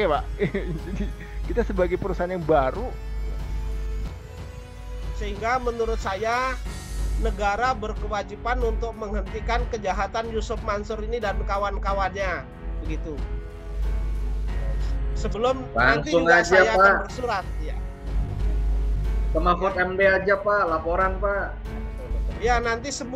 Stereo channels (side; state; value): both; identical; correlation 1.00